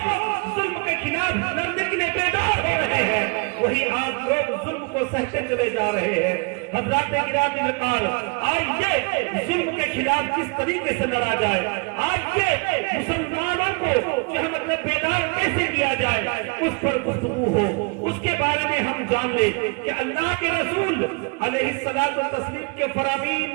ظلم کے خلاف لڑنے کے لیے بیدار ہو رہے ہیں، وہی آج لوگ ظلم کو سہتے چلے جا رہے ہیں۔ حضرات گرامی وقار، آئیے ظلم کے خلاف کس طریقے سے لڑا جائے، آئیے مسلمانوں کو جو ہے مطلب بیدار کیسے کیا جائے اس پر گفتگو ہو، اس کے بارے میں ہم جان لیں کہ اللہ کے رسول علیہ الصلوۃ والتسلیم کے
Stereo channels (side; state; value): left; quieter; 32.3 dB